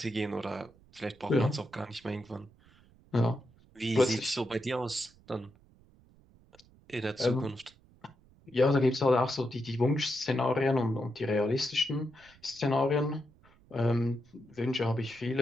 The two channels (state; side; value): noise; right; rumble, 28 dB below the sound